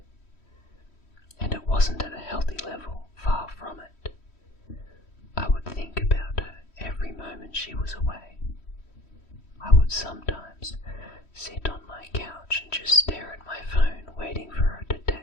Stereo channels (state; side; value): late; right; 3.1 ms